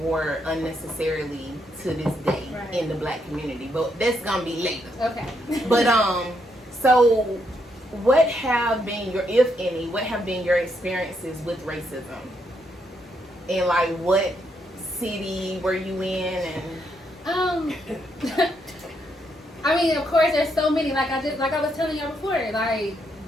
war unnecessarily to this day in the black community. But that's gonna be later. Okay. But so what have been your, if any, what have been your experiences with racism? And like what city were you in? And I mean, of course, there's so many. Like I was telling y'all before, like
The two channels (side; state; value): both; normal; correlation 0.77